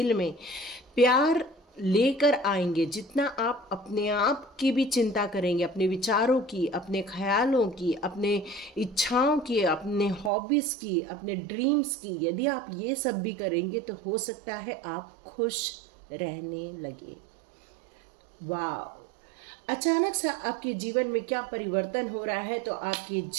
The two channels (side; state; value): left; drops out; at 10.3 s